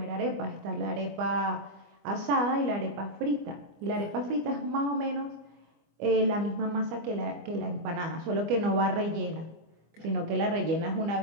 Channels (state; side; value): late; left; 25 ms